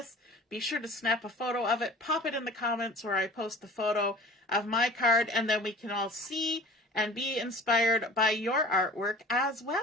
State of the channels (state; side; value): normal; both; correlation 0.43